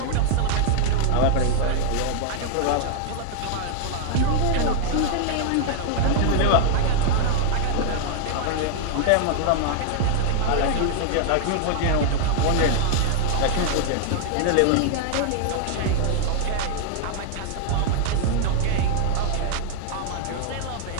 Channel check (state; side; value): different; both; correlation 0.00